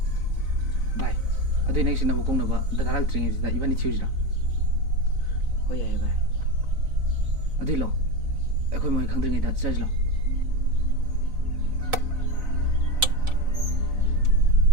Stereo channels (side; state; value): left; late; 4.0 ms